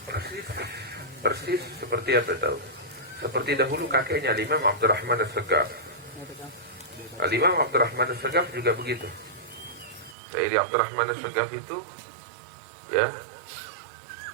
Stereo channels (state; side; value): drops out; left; at 10.2 s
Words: persis seperti apa tahu? Seperti dahulu kakeknya Imam Abdurrahman As-Sagaf. Imam Abdurrahman As-Sagaf juga begitu. Sayyidi Abdurrahman As-Sagaf itu ya,